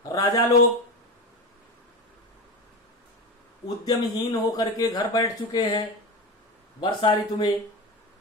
राजा लोग उद्यमहीन होकर के घर बैठ चुके हैं वर्षा ऋतु में,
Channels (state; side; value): normal; both; correlation 0.23